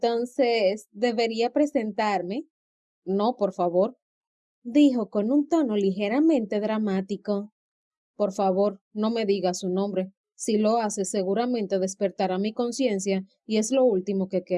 ¿debería presentarme? No, por favor, dijo con un tono ligeramente dramático. Por favor, no me diga su nombre. Si lo hace, seguramente despertará mi conciencia y es lo último que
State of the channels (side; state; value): both; identical; correlation 1.00